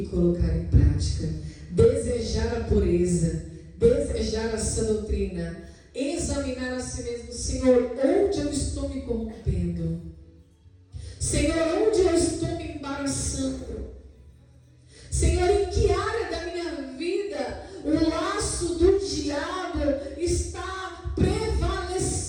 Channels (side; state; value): both; identical; correlation 1.00